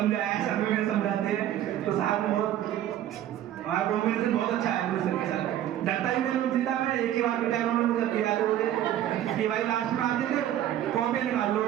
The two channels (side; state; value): left; quieter; 11.9 dB